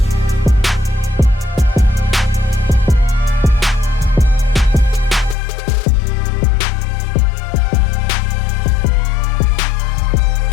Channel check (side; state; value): right; drops out; at 5.4 s